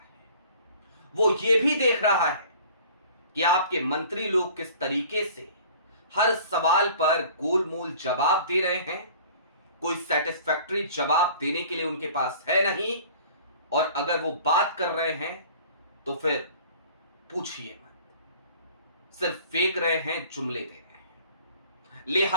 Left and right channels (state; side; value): inverted; both; correlation -0.48